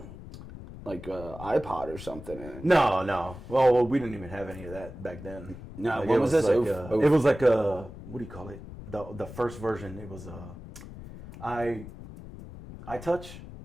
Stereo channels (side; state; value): left; noise; rumble, 14 dB below the sound